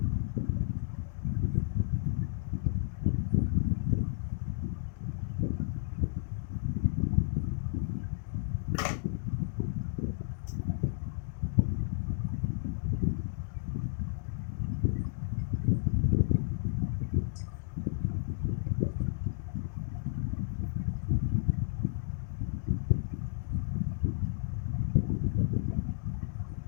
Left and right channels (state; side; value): silent; right; digital silence